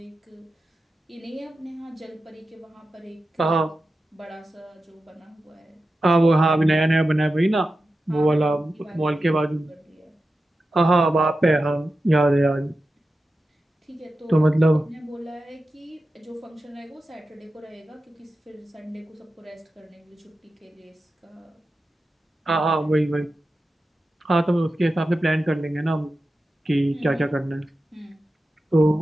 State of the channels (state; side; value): normal; both; correlation 0.92